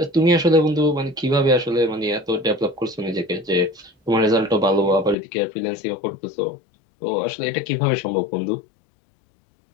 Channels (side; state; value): right; drops out; at 5.2 s